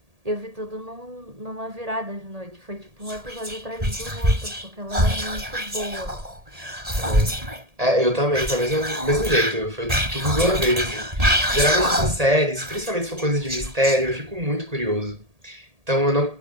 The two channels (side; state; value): left; late; 1.8 ms